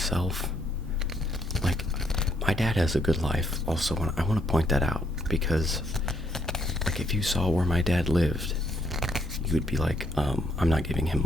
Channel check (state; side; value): normal; both; correlation 0.72